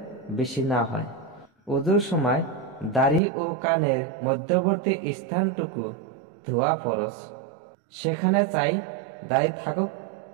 বেশি না হয়। ওযুর সময় দাড়ি ও কানের মধ্যবর্তী স্থানটুকু ধোয়া ফরজ, সেখানে চাই দাড়ি থাকুক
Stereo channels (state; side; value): drops out; left; at 3.2 s